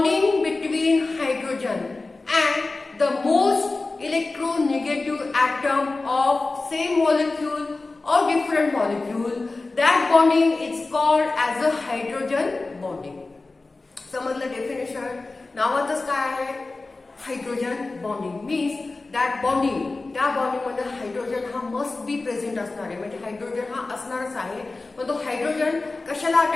between hydrogen and the most electronegative atom of same molecule or different molecule, that bonding is called as a hydrogen bonding. समजलं डेफिनेशन? नावातच काय आहे? Hydrogen bonding means that bonding, त्या बॉन्डिंग मध्ये हायड्रोजन हा must be present असणार आहे, म्हणजे हायड्रोजन हा असणारच आहे. पण तो हायड्रोजन कशाला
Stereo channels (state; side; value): quieter; right; 3.4 dB